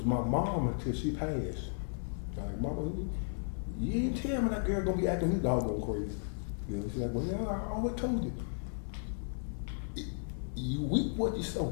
my mom until she passed. Like, Mama, you ain't tell me that girl gonna be acting this doggone crazy. You know, she's like, well, I always told you. You reap what you sow.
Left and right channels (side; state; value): right; silent; digital silence